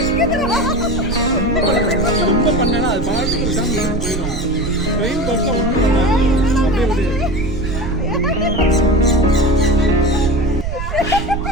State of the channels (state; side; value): noise; right; rumble, 5 dB below the sound